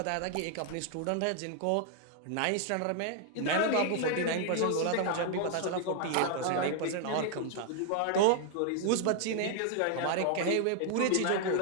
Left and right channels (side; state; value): both; different; correlation 0.00